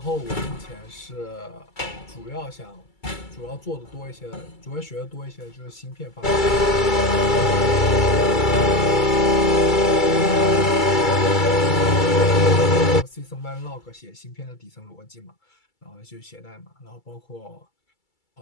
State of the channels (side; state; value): right; late; 2.3 ms